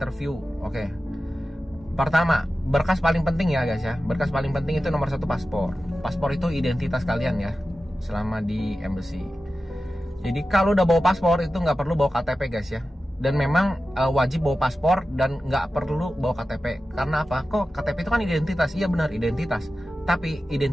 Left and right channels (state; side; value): normal; both; correlation 0.93